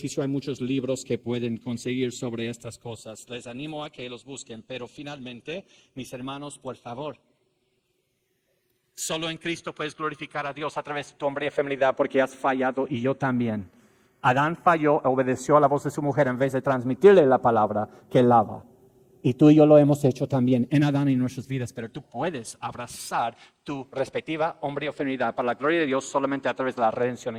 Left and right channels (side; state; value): both; identical; correlation 1.00